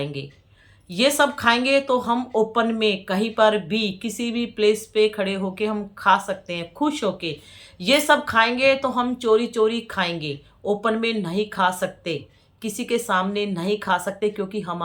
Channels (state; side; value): identical; both; correlation 1.00